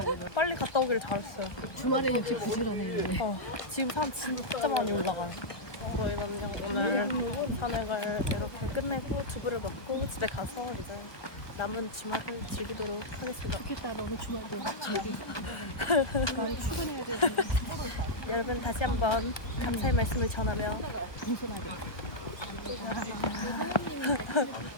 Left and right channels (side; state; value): right; late; 1.2 ms